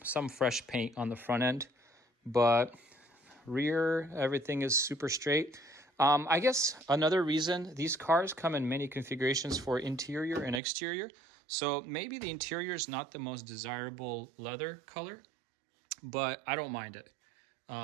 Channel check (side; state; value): left; drops out; at 10.6 s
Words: fresh paint on the front end, but rear, everything is super straight. I guess another reason, these cars come in many configurations for interior and exterior. So maybe the interior is not the most desirable leather color, but I don't mind it.